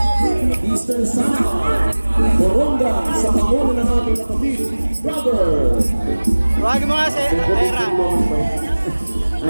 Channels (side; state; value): both; inverted; correlation -1.00